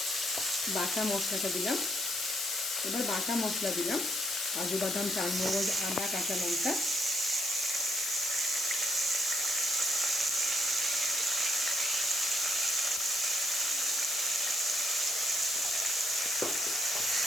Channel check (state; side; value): noise; left; hiss, 2 dB below the sound